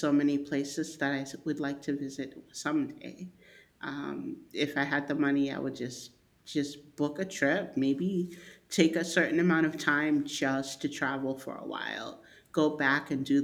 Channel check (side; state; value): both; identical; correlation 1.00